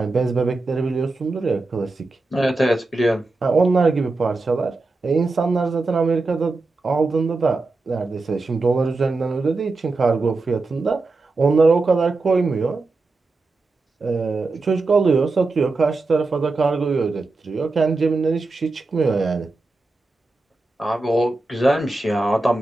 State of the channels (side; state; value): left; quieter; 3.4 dB